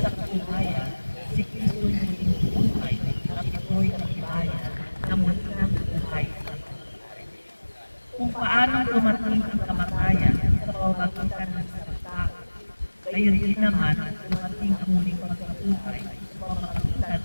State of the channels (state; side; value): inverted; both; correlation -1.00